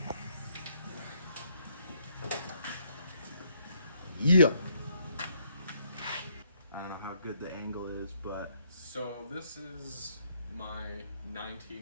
Yeah. I don't know how good the angle is, but So this is my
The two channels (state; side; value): inverted; both; correlation -0.70